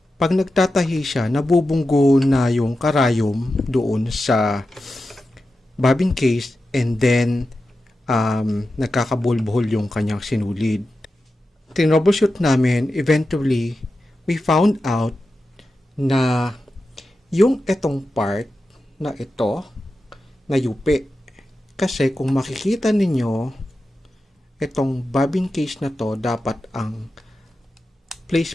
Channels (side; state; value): both; normal; correlation 0.91